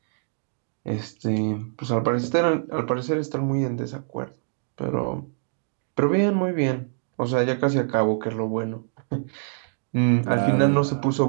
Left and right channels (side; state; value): left; silent; digital silence